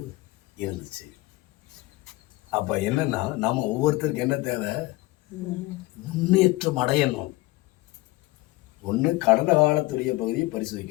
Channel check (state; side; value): quieter; right; 19.9 dB